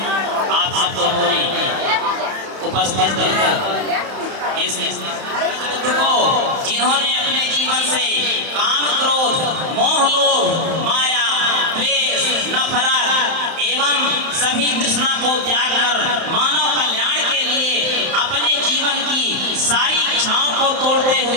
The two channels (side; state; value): left; late; 31 ms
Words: आप सब तो बोले उपस्थित इस को जिन्होंने अपने जीवन से काम क्रोध मोह लोभ माया द्वेष नफरत एवं सभी तृष्णा को त्याग कर मानव कल्याण के लिए अपने जीवन की सारी इच्छाओं को तोड़ते